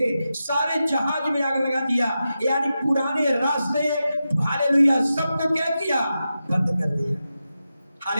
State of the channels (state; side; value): inverted; both; correlation -0.91